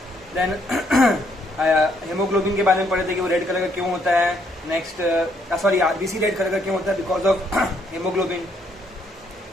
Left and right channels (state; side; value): normal; both; correlation 0.71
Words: देन हेमोग्लोबिन के बारे में पढ़े थे कि वो रेड कलर का क्यों होता है। Next sorry RBC red colour का क्यों होता है, because of haemoglobin.